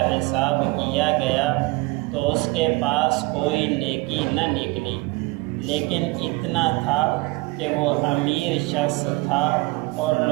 حساب کیا گیا تو اس کے پاس کوئی نیکی نہ نکلی، لیکن اتنا تھا کہ وہ امیر شخص تھا اور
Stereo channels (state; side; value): quieter; left; 23.4 dB